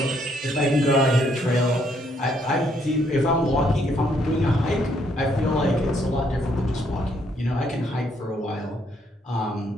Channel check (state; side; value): normal; both; correlation 0.70